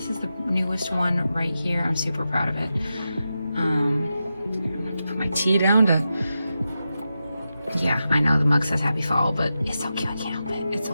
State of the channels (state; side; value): inverted; both; correlation -0.90